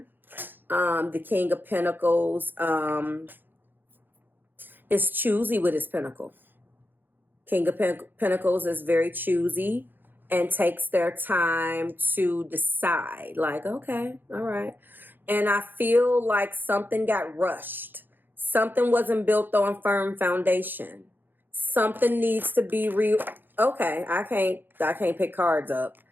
The King of Pentacles is choosy with his pentacle. King of Pentacles is very choosy and takes their time to decide. Like, okay, all right. And I feel like something got rushed. Something wasn't built on firm foundation. Something needs to be okay, I can't pick cards up.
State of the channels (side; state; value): left; late; 0.092 ms